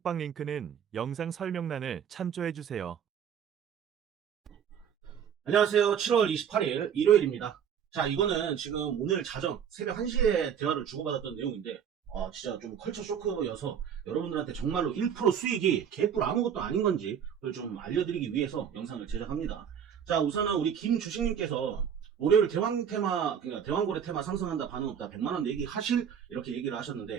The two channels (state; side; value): quieter; left; 8.2 dB